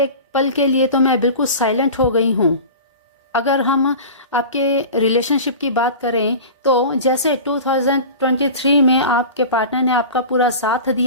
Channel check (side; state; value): both; inverted; correlation -0.34